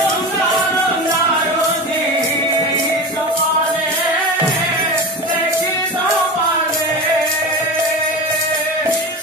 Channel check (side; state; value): both; normal; correlation 0.26